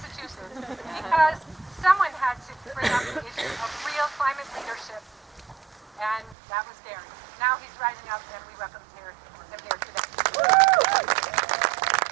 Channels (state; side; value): drops out; left; at 6.4 s